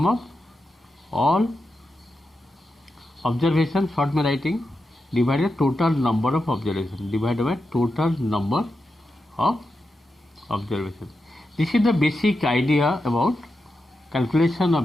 of all observation, short में writing, divided by total number of observation, divided by total number of observation. This is the basic idea about calculation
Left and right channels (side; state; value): both; normal; correlation 0.88